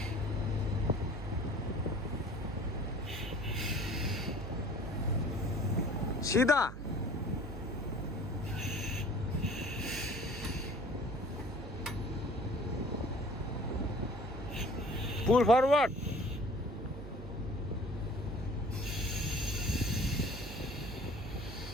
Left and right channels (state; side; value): noise; right; hum, 10 dB below the sound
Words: सीधा Pull forward.